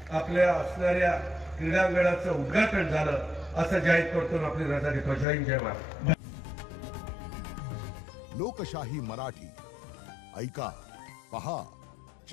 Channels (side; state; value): right; drops out; at 5.2 s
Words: आपल्या असणाऱ्या क्रीडांगणाचं उद्घाटन झालं असं जाहीर करतो, आपली रजा देतो। जय हिंद, जय महाराष्ट्र। लोकशाही मराठी ऐका, पहा,